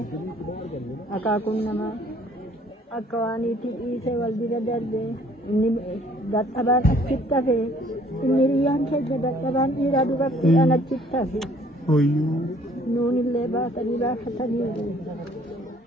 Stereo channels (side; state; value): both; normal; correlation 0.59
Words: Akakun nama. Akawan itu sewal biradar deh. Ini databan cipta deh. Ini riang kerja databan iradu bakti anak cipta deh. Oh iya. Nuni leba tadi lah tadi.